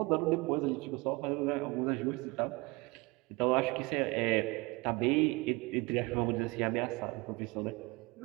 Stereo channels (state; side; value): quieter; left; 25.0 dB